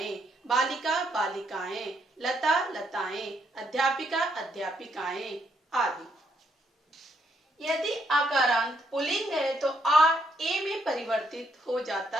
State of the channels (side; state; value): both; normal; correlation 0.74